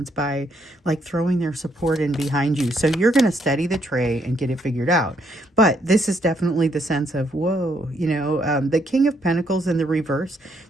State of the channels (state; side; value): normal; both; correlation 0.72